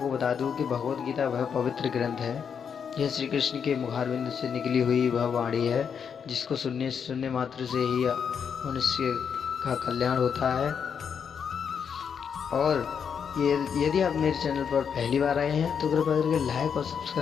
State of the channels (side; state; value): right; quieter; 7.1 dB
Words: बता दूं कि भगवद गीता वह पवित्र ग्रंथ है। यह श्री कृष्ण के मुखारविंद से निकली हुई वह वाणी है जिसको सुनने मात्र से ही मनुष्य का कल्याण होता है। और ये यदि आप मेरे चैनल पर पहली बार आए हैं तो कृपया करके लाइक और